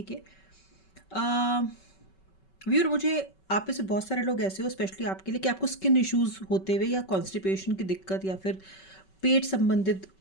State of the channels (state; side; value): late; right; 5.3 ms